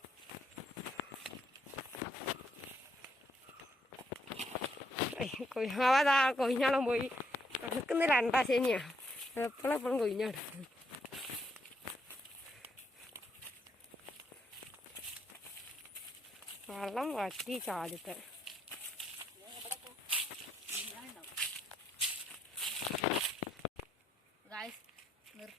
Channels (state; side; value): normal; both; correlation 0.74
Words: കൊയ്യാവാതാ കൊയ്ഞ്ഞാളം പോയി നടക്കുന്ന 2 ശനിയാ. എപ്പോഴും കൊയ്ഞ്ഞാട്. വെള്ളം വറ്റി ചാടിത്തെ. ഗായ്സ്